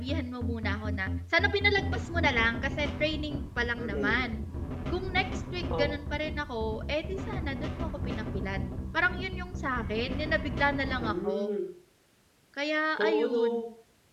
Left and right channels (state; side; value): identical; both; correlation 1.00